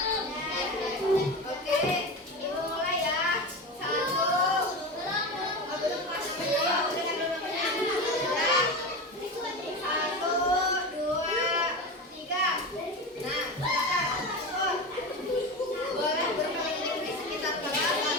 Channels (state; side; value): normal; both; correlation 0.24